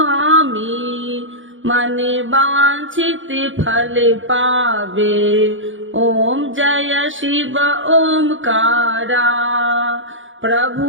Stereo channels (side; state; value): left; late; 0.56 ms